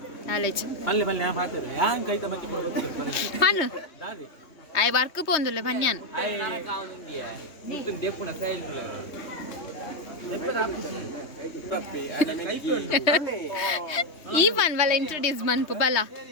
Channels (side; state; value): right; late; 3.2 ms